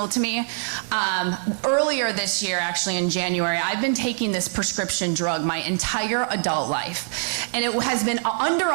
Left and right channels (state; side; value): silent; left; digital silence